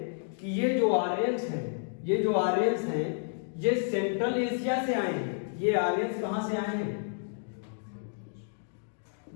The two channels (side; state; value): right; silent; digital silence